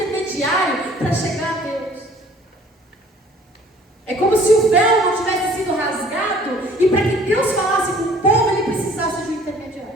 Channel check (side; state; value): both; normal; correlation 0.54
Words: para chegar a Deus. É como se o véu não tivesse sido rasgado e para que Deus falasse com o povo, ele precisasse de um